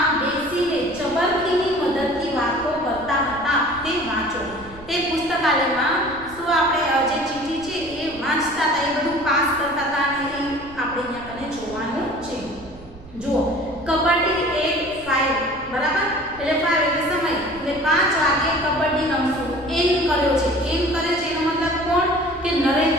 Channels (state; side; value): noise; right; rumble, 19 dB below the sound